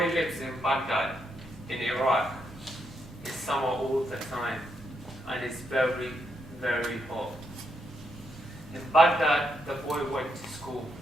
lives in Baghdad, in Iraq. It's summer all the time, and it's very, very hot. In Baghdad, the boy went to school.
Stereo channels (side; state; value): both; normal; correlation 0.79